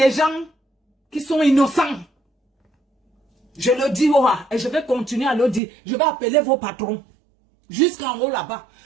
gens qui sont innocents. Je le dis et je vais continuer à le dire. Je vais appeler vos patrons. Jusqu'en haut là-bas.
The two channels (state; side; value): drops out; left; at 5.6 s